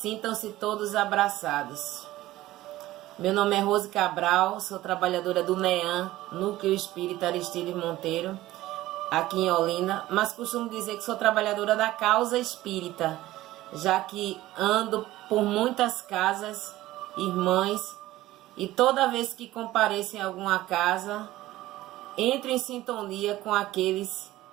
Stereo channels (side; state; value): left; quieter; 16.2 dB